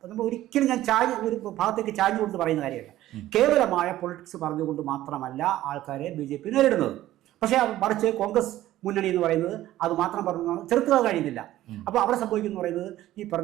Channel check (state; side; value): quieter; left; 14.4 dB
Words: നമ്മൾ ഒരിക്കലും ഞാൻ ഒരു ഭാഗത്തേക്ക് ചാഞ്ഞുകൊണ്ട് പറയുന്ന കാര്യമല്ല. കേവലമായ പൊളിറ്റിക്സ് പറഞ്ഞുകൊണ്ട് മാത്രമല്ല ആൾക്കാരെ BJP നേരിടുന്നത്. പക്ഷേ മറിച്ച് കോൺഗ്രസ് മുന്നണി എന്ന് പറയുന്നത് അത് മാത്രം പറഞ്ഞാണ് ചെറുത്തുക കഴിയുന്നില്ല. അപ്പോൾ അവിടെ സംഭവിക്കുന്നു പറയുന്നത് ഈ